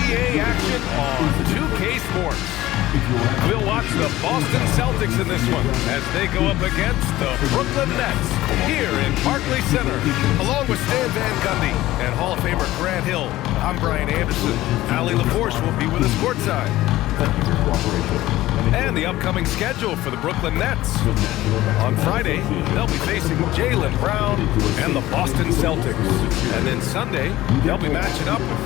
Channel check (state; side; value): quieter; right; 16.2 dB